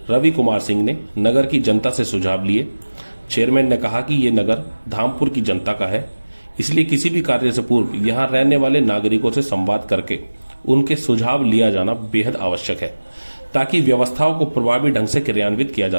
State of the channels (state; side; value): inverted; both; correlation -1.00